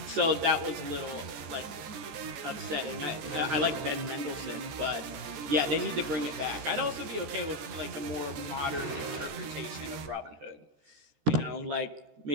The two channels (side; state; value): left; late; 14 ms